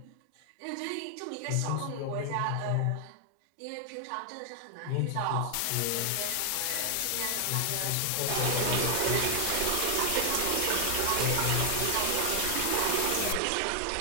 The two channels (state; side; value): different; both; correlation 0.00